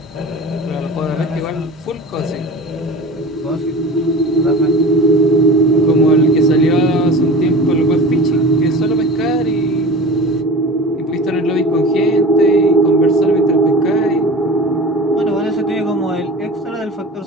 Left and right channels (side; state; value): both; normal; correlation 0.35